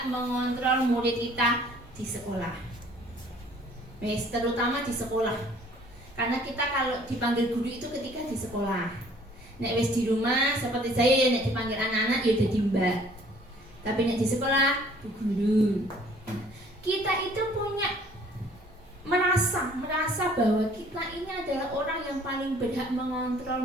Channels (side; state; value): both; normal; correlation 0.56